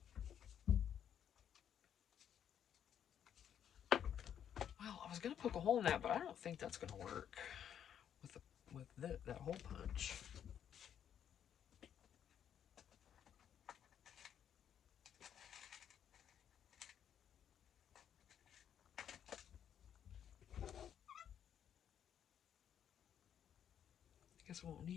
Well, I was going to poke a hole in that, but I don't think that's going to work with that hole punch. I guess I won't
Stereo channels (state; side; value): quieter; right; 9.2 dB